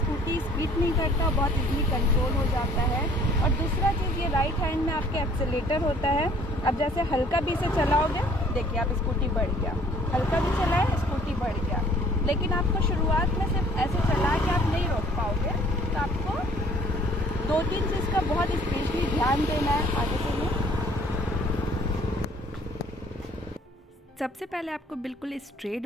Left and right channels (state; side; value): normal; both; correlation 0.56